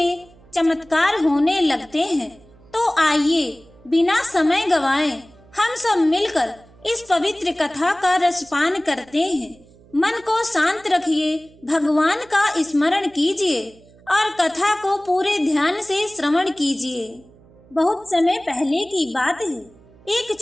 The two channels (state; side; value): noise; right; hum, 26 dB below the sound